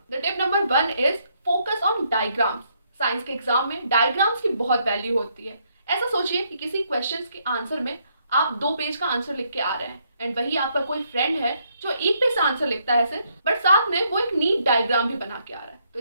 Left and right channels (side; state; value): both; inverted; correlation -0.73